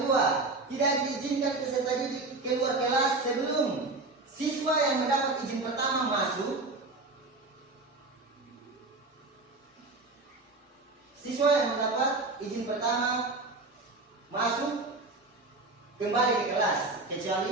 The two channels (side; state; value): left; quieter; 3.3 dB